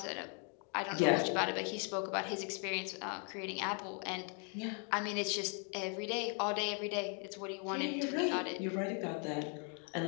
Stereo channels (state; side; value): quieter; right; 39.5 dB